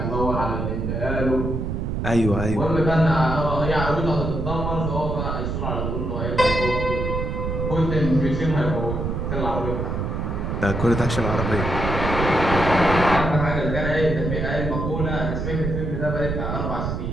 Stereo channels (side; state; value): right; noise; rumble, 2 dB below the sound